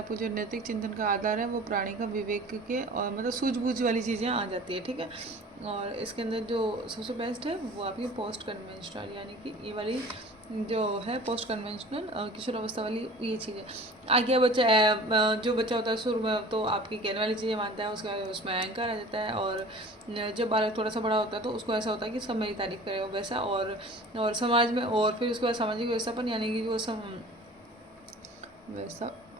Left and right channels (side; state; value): both; normal; correlation 0.43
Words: जो नैतिक चिंतन का आधार है वो प्राणी का विवेक के और मतलब सूझबूझ वाली चीज़ें आ जाती है, ठीक है। और इसके अंदर जो सबसे बेस्ट है वो आपकी पोस्ट कन्वेंशनल, यानी कि ये वाली जो है पोस्ट कन्वेंशनल किशोर अवस्था वाली ये चीज़ें। आगे बच्चा जो बच्चा होता है शुरू में तो आपकी कहने वाली चीज़ें मानता है, उसके बाद उसमें अहंकार आ जाता है, और जब बालक थोड़ा सा बड़ा होता है तो उसको ऐसा होता है कि सब मेरी तारीफ करे वैसा, और समाज में, और फिर उसके बाद सामाजिक व्यवस्थापन, यानी कि जो वैसा